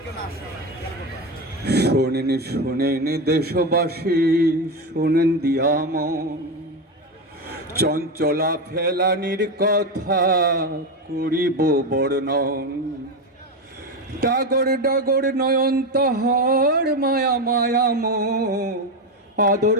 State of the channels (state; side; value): normal; both; correlation 0.15